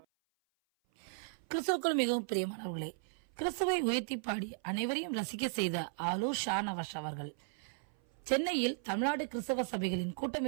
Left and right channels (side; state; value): left; silent; 54 dB below the other